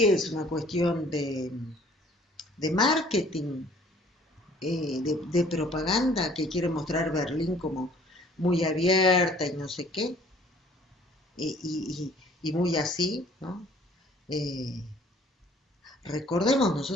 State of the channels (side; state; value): both; normal; correlation 0.55